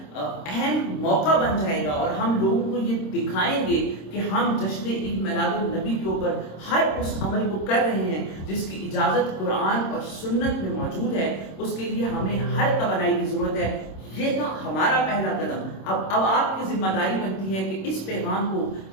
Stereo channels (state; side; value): late; right; 26 ms